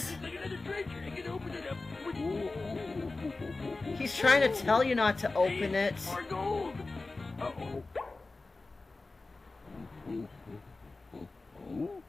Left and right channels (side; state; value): right; quieter; 3.4 dB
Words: It's like another treasure. I can open it up. He's trying to tell you not to open it. More gold. Uh-oh.